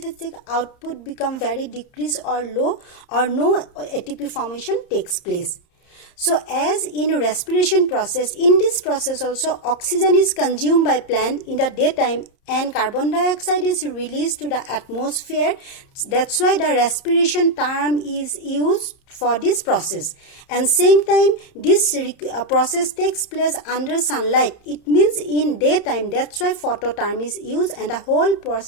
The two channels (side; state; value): right; late; 30 ms